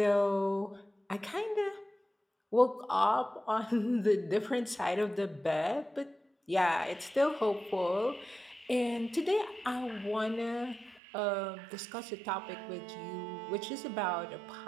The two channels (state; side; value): drops out; left; at 11.0 s